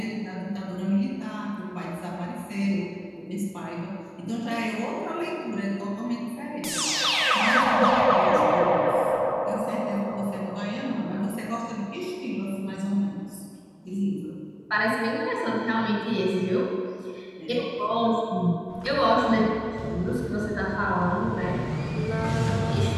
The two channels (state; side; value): identical; both; correlation 1.00